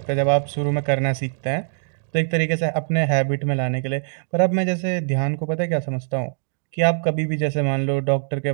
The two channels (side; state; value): left; silent; digital silence